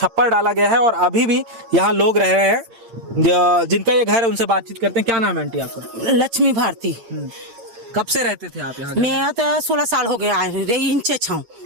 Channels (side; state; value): left; late; 8.7 ms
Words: डाला गया है, और अभी भी यहाँ लोग रह रहे हैं जिनका ये घर है। उनसे बातचीत करते हैं। क्या नाम है आंटी आपका? लक्ष्मी भारती। कब से रहते थे आप यहाँ? मैं तो 16 साल हो गया इंचे छाऊ।